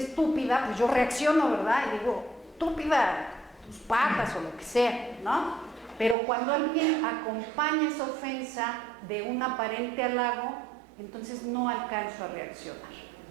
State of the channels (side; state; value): left; drops out; at 6.2 s